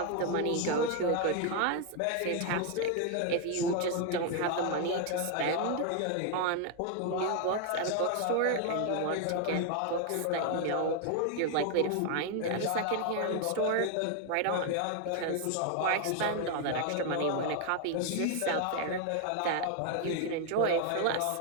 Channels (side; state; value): both; different; correlation 0.01